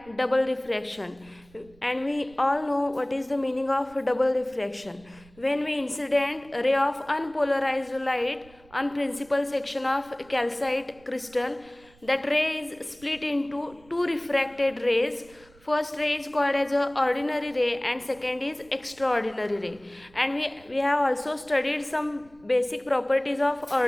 double refraction, and we all know what is the meaning of double refraction. When we incident a ray of unpolarized light on principal section of calcite crystal, that ray is split into two refracted rays. First ray is called as a ordinary ray and second is extraordinary ray. And we have also studied some basic properties of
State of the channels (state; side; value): noise; right; rumble, 27 dB below the sound